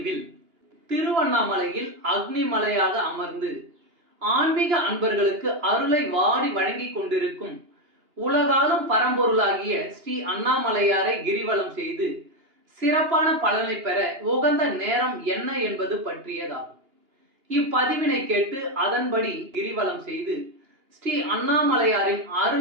திருவண்ணாமலையில் அக்னி மலையாக அமர்ந்து ஆன்மீக அன்பர்களுக்கு அருளை வாரி வழங்கிக் கொண்டிருக்கும் உலகாலும் பரம்பொருளாகிய ஸ்ரீ அண்ணாமலையாரை கிரிவலம் செய்து சிறப்பான பலனை பெற உகந்த நேரம் என்ன என்பது பற்றியதாகும். இப்பதிவினை கேட்டு அதன்படி கிரிவலம் செய்து ஸ்ரீ அண்ணாமலையாரின்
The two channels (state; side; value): late; left; 2.9 ms